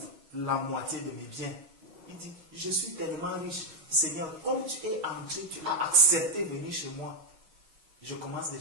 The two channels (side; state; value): left; late; 6.3 ms